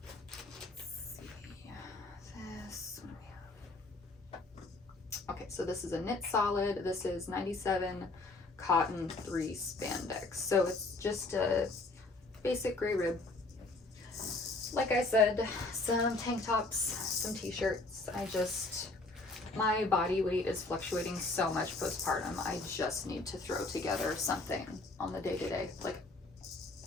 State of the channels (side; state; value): right; quieter; 3.2 dB